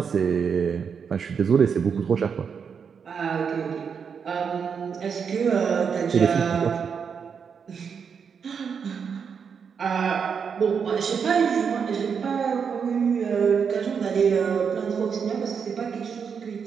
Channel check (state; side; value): quieter; left; 6.5 dB